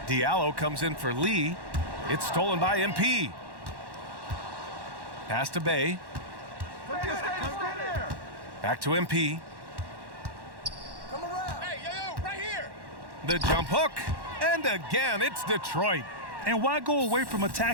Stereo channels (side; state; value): left; late; 1.1 ms